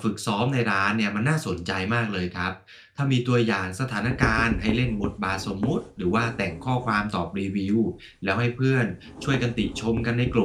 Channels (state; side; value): identical; both; correlation 1.00